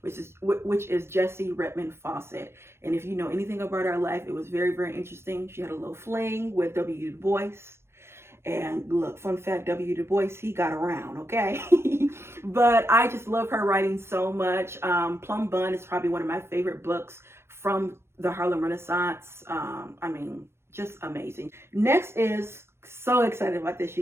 is Jessie Redmond Fawcett. And if you know anything about her life, it was very, very interesting. She had a little fling with W. Du Bois. And look, fun fact, W. Du Bois, he got around, okay? But I just love her writing so much. Plum Bun is probably one of my favorite books from the Harlem Renaissance. Just amazing. Next is, so excited about this,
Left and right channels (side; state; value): left; late; 0.12 ms